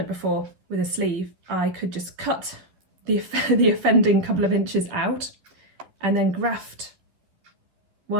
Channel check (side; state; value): left; late; 11 ms